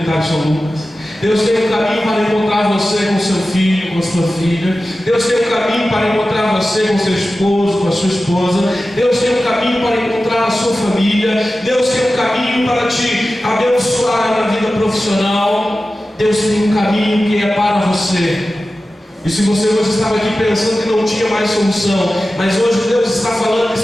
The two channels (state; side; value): normal; both; correlation 0.94